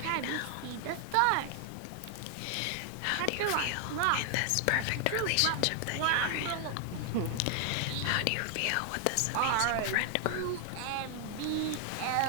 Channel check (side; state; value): both; different; correlation 0.00